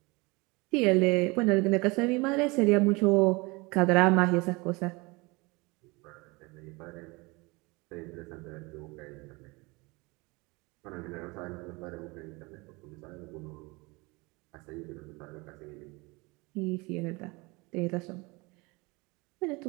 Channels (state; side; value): quieter; left; 25.5 dB